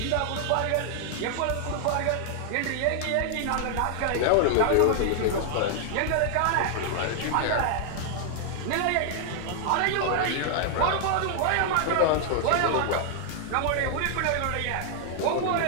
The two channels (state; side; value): different; both; correlation 0.00